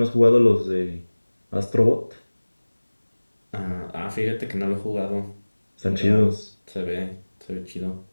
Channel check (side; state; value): both; inverted; correlation -1.00